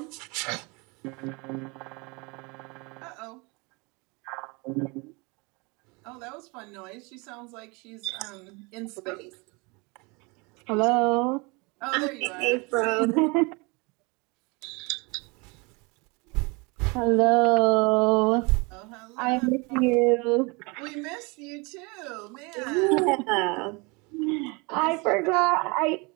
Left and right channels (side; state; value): left; quieter; 28.3 dB